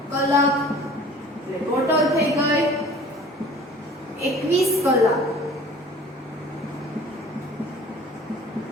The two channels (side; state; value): both; normal; correlation 0.47